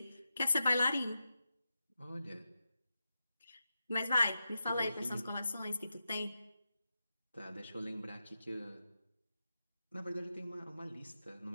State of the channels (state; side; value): inverted; both; correlation -0.90